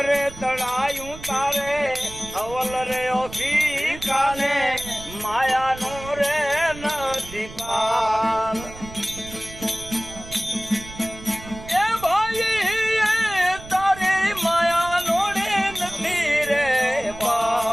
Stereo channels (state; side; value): noise; right; rumble, 15 dB below the sound